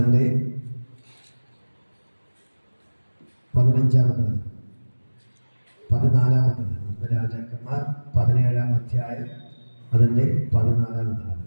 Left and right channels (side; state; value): both; inverted; correlation -1.00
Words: 15-ാമത്തെ 14-ാമത്തെ. ഒന്ന് രാജാക്കന്മാർ 17-ാം അധ്യായം അതിൻ്റെ 14-ാമത്തെ.